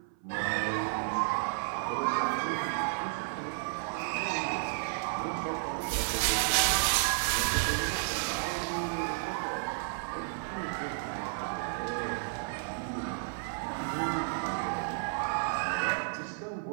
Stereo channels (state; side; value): silent; left; 56 dB below the other